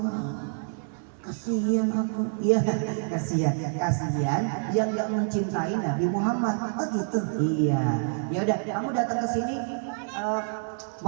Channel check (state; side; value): silent; left; 55 dB below the other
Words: Kasihan aku. Iya, kasihan yang nggak mencintai Nabi Muhammad. Oh gitu. Iya. Ya udah, kamu datang ke sini